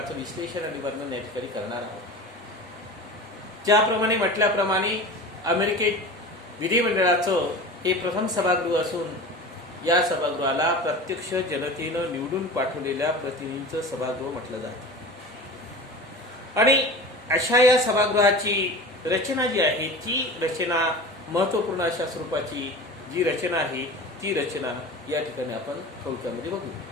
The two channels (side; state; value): both; normal; correlation 0.34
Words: विश्लेषण आणि वर्णन या ठिकाणी करणार आहोत. ज्याप्रमाणे म्हटल्याप्रमाणे अमेरिकेत विधिमंडळाचं हे प्रथम सभागृह असून या सभागृहाला प्रत्यक्ष जनतेनं निवडून पाठवलेल्या प्रतिनिधींचं सभागृह म्हटलं जातं. आणि अशा या सभागृहाची रचना जी आहे ती रचना महत्त्वपूर्ण अशा स्वरूपाची जी रचना आहे ती रचना या ठिकाणी आपण थोडक्यामध्ये बघू.